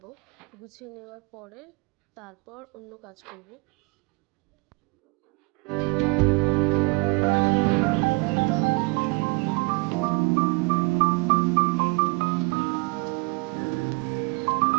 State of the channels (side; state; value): left; quieter; 28.6 dB